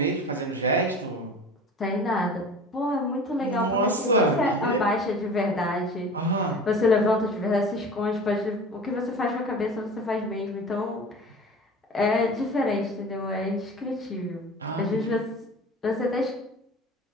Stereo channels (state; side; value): normal; both; correlation 0.38